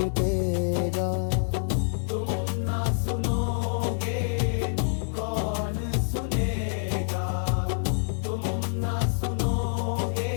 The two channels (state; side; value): silent; right; digital silence